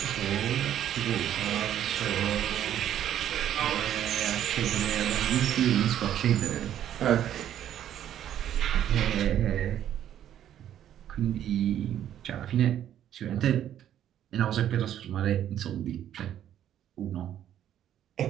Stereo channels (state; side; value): quieter; left; 10.8 dB